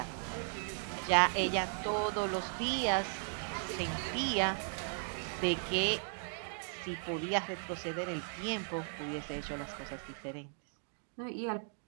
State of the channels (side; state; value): left; silent; 53 dB below the other